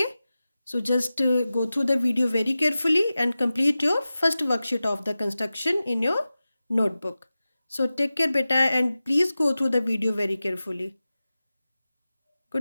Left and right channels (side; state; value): both; inverted; correlation -0.95